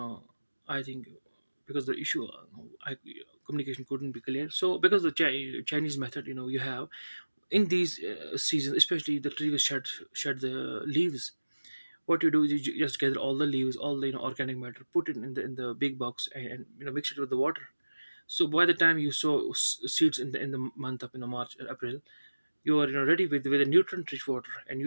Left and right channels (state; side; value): inverted; both; correlation -1.00